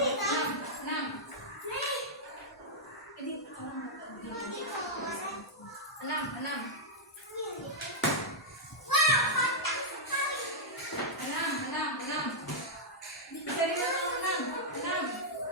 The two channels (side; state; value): both; normal; correlation -0.07